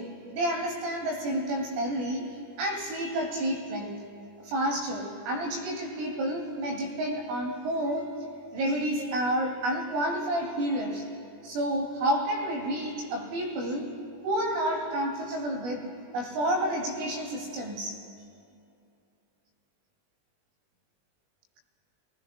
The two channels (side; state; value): left; late; 20 ms